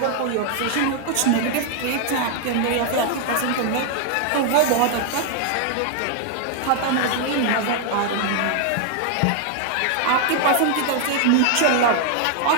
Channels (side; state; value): both; different; correlation 0.00